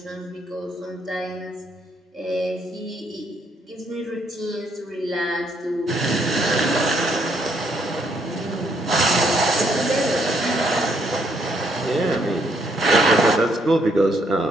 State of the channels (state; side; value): normal; both; correlation 0.71